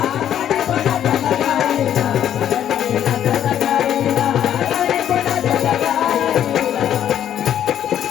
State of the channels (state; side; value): quieter; right; 10.3 dB